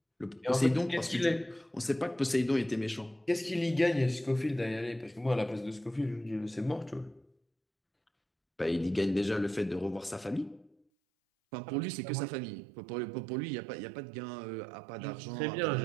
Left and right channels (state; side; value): drops out; left; at 10.8 s